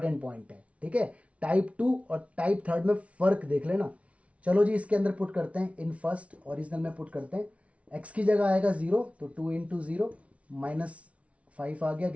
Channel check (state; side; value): late; left; 0.064 ms